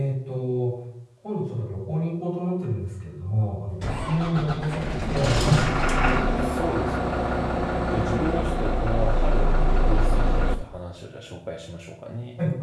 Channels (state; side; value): identical; both; correlation 1.00